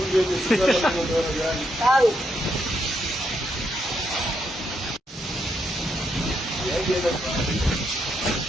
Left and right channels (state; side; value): normal; both; correlation 0.79